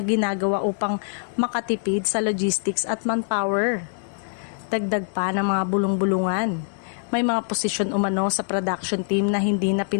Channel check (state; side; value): silent; right; 63 dB below the other